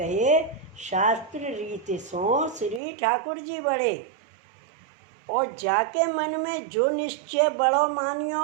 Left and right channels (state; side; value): drops out; left; at 2.8 s